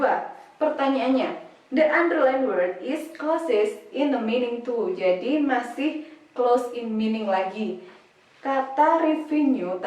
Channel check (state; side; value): identical; both; correlation 1.00